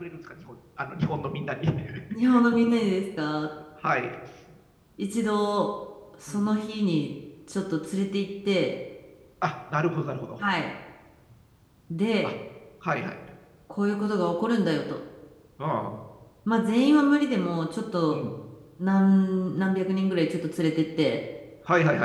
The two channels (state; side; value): identical; both; correlation 1.00